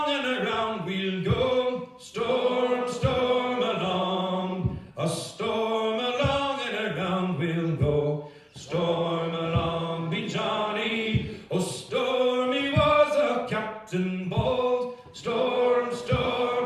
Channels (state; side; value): identical; both; correlation 1.00